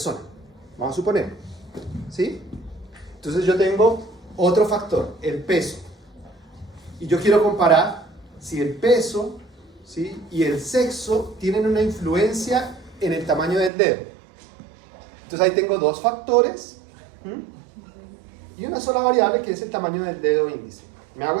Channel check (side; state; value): left; drops out; at 13.7 s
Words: Vamos a suponer, ¿sí? Entonces yo tengo otro factor, el peso, y yo quiero comparar si el peso, ¿sí?, y el sexo tienen una influencia en el tamaño del dedo. Entonces ahí tengo dos factores, ¿m?, y una sola variable que es el tamaño del dedo índice. ¿Me hago